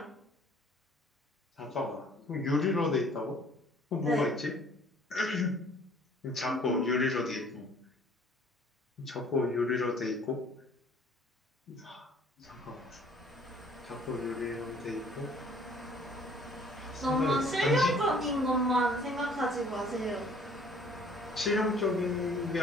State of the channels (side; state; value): both; normal; correlation 0.55